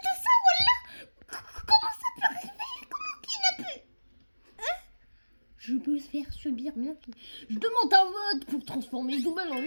ça, voilà. Comment ça peut arriver? Comment qui n'a pu? Hein? Je peux faire subir bien. Je demande un vote pour transformer Zoubel en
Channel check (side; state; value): both; inverted; correlation -1.00